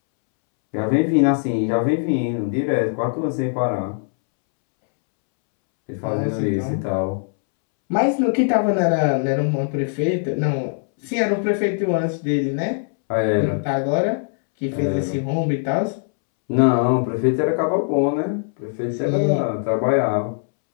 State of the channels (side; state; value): right; silent; 65 dB below the other